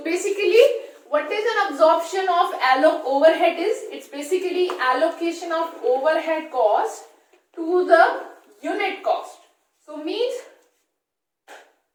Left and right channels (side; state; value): both; identical; correlation 1.00